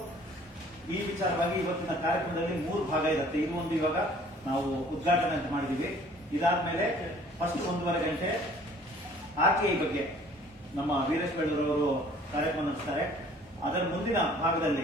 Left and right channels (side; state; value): both; normal; correlation 0.54